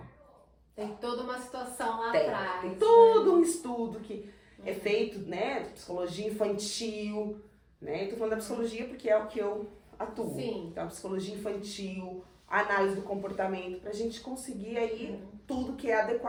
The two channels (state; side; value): identical; both; correlation 1.00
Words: Tem toda uma situação lá atrás. Tem todo um estudo que é feito, né, psicologia infantil, né, eu tô falando da psicologia porque é o que eu atuo. Sim. Então, a psicologia infantil, a análise do comportamento, pra gente conseguir aí tudo que é